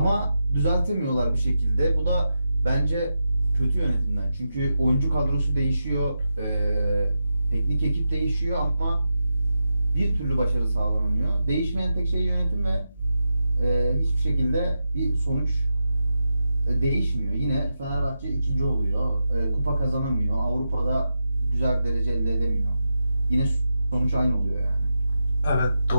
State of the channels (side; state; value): both; inverted; correlation -0.87